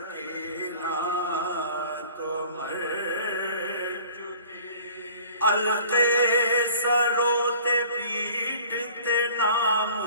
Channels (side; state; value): both; inverted; correlation -0.48